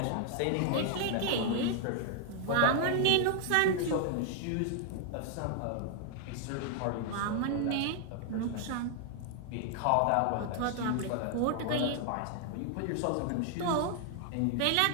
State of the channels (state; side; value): different; both; correlation 0.00